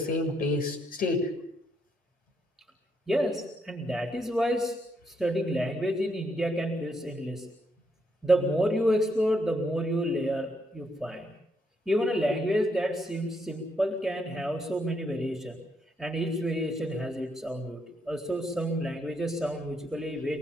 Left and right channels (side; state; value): both; normal; correlation 0.76